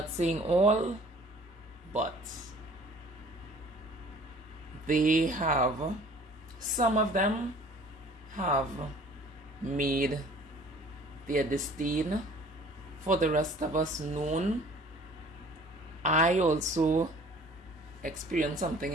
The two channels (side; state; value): both; normal; correlation 0.51